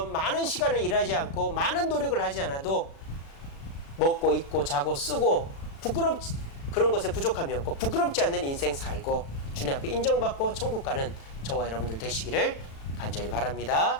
많은 시간을 일하지 않고 많은 노력을 하지 않아도 먹고 입고 자고 쓰고 그런 것에 부족함이 없고 부끄럽지 않는 인생 살고 주님 앞에 인정받고 천국 가는 저와 여러분들 되시기를 간절히 바랍니다.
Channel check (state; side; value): late; right; 36 ms